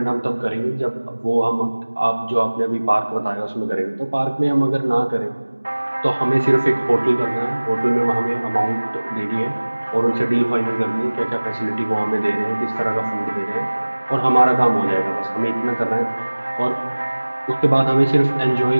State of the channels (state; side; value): inverted; both; correlation -1.00